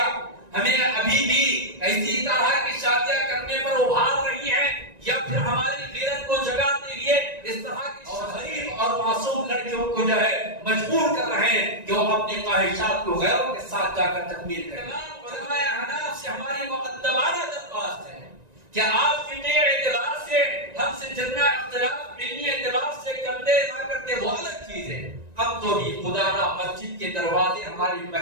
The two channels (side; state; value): left; late; 1.9 ms